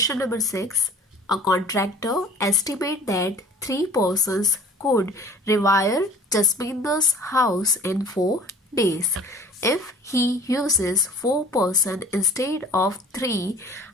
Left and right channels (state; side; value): normal; both; correlation 0.48